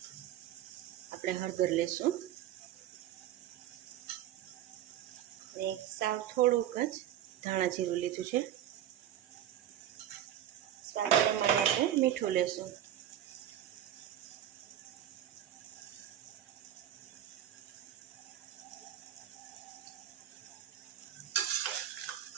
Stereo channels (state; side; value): quieter; left; 11.5 dB